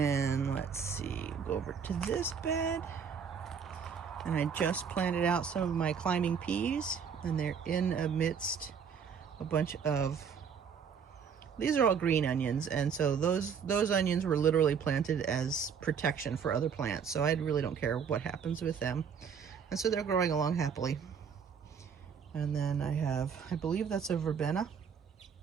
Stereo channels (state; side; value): quieter; left; 6.8 dB